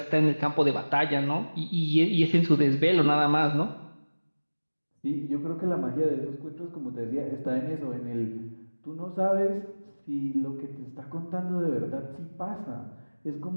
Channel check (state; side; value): inverted; both; correlation -1.00